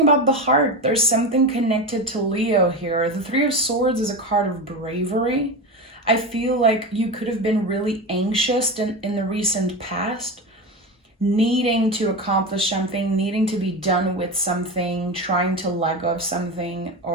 about the heart. There's something connected to Leo here. The Three of Swords is a card of bravery. I feel like you could have been really anxious in the recent past, needing to accomplish something, needing to be done with something, trying to let go of something,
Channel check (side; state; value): both; normal; correlation 0.22